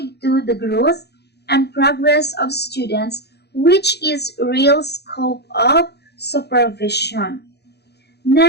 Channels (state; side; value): late; right; 0.48 ms